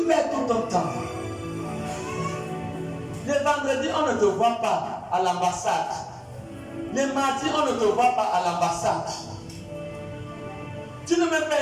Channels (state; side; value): identical; both; correlation 1.00